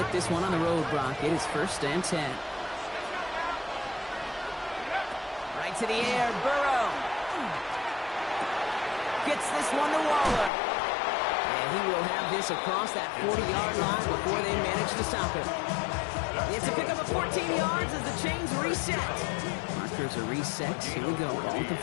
this one on the road, Brock. It is 1st and 10. Right to the air, Burrow. Gets this one to Waller. And he will have this across that 40-yard line before they manage to stop him. It's a pickup of 14 yards as the chains reset. Markers are reset. Here we go. Ball at the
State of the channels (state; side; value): drops out; right; at 10.5 s